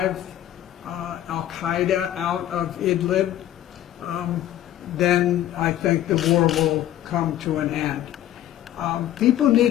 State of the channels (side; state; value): right; quieter; 12.6 dB